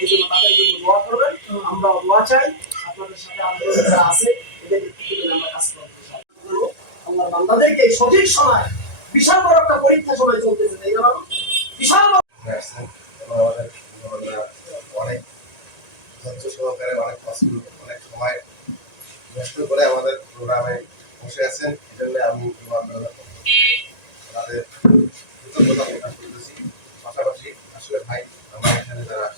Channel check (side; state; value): right; late; 1.9 ms